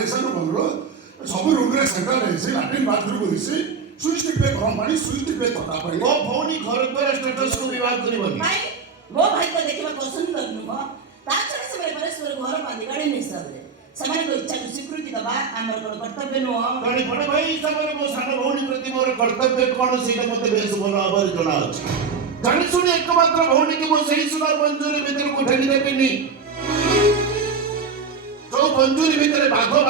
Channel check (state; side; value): quieter; left; 5.4 dB